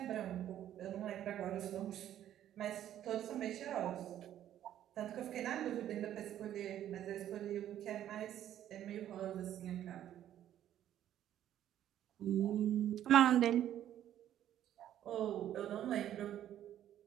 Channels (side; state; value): left; quieter; 11.4 dB